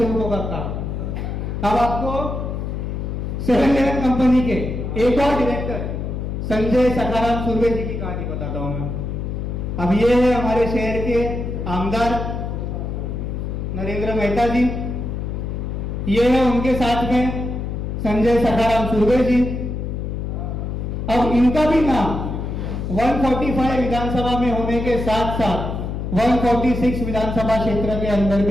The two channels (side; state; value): left; noise; hum, 4 dB below the sound